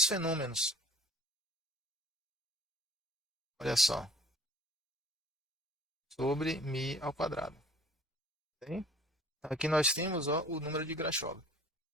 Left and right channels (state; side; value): normal; both; correlation 0.49